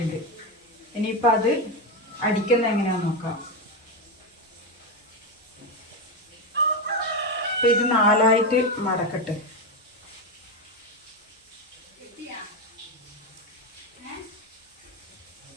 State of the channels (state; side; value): normal; both; correlation 0.12